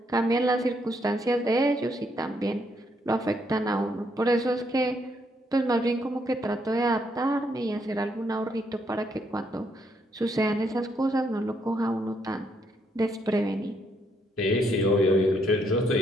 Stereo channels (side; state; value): both; normal; correlation 0.74